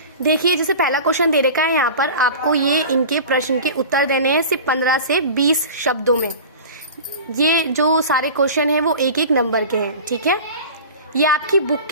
देखिए जैसे पहला क्वेश्चन दे रखा है यहाँ पर, आपको ये इनके प्रश्न के उत्तर देने हैं सिर्फ 15 से 20 शब्दों में। ये जो सारे क्वेश्चन हैं वो एक एक नंबर के हैं, ठीक है। ये आपकी बुक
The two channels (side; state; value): both; inverted; correlation -0.36